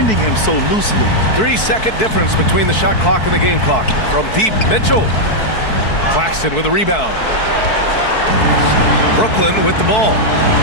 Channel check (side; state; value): right; late; 4.6 ms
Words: him so loosely. 3-second difference between the shot clock and the game clock. From deep, Mitchell. Claxton with a rebound. Brooklyn with the ball.